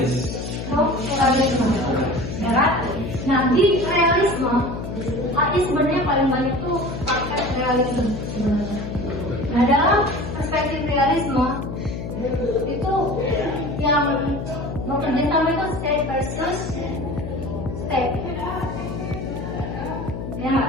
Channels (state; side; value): noise; left; hum, 7 dB below the sound